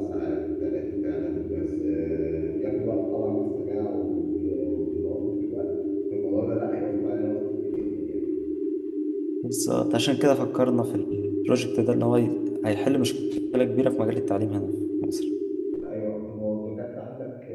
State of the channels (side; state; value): both; identical; correlation 1.00